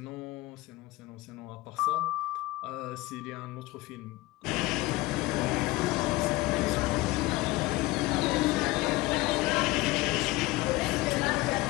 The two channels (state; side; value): quieter; right; 19.9 dB